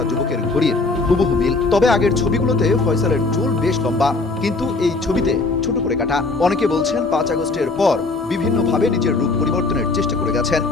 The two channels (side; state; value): right; quieter; 3.6 dB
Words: যুবকের ঘড়ির হুবহু মিল। তবে আগের ছবিগুলোতে ফয়সালের চুল বেশ লম্বা, কিন্তু এই ছবিতে ছোট করে কাটা। অনেকে বলছেন 5 আগস্টের পর বিভিন্নভাবে নিজের রূপ পরিবর্তনের চেষ্টা করে গেছেন।